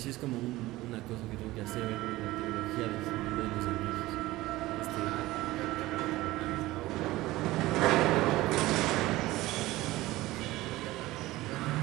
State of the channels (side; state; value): left; quieter; 18.1 dB